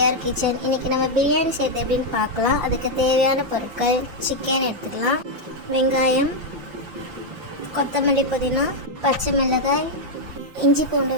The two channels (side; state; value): left; late; 5.8 ms